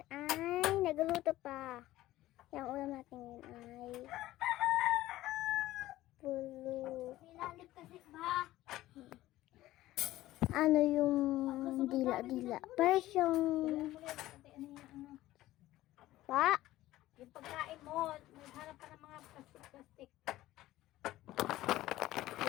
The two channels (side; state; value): right; quieter; 15.9 dB